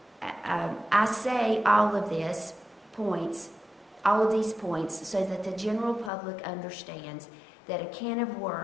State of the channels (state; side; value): drops out; right; at 6.1 s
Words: points so that the general public understands that a can of